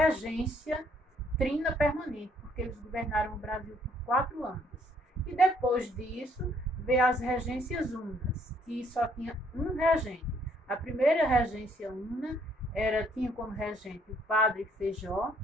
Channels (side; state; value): both; normal; correlation 0.66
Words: trina permanente, porque eles governaram o Brasil por 4 anos. E depois disso, veio as regências unas, que só tinha um regente. A primeira regência una tinha como regente o padre Feijó,